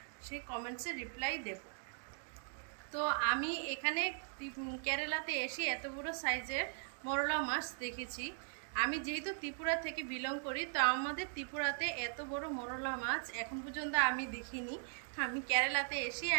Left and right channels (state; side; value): silent; left; 52 dB below the other